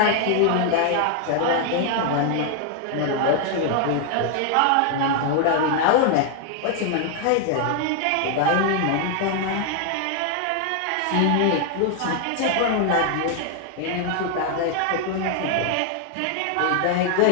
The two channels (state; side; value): different; both; correlation 0.00